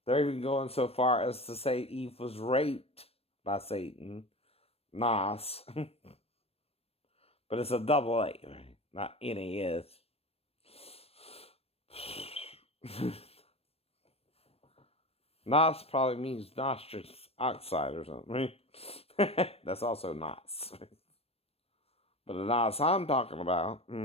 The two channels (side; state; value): right; late; 0.28 ms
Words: They're even going so far as to say Eve was raped by Satan, Nos, but it's a double A, right? Not NAS. Nos probably means nostrous oxide or something, right? That's also Nos. But the Nos I'm talking about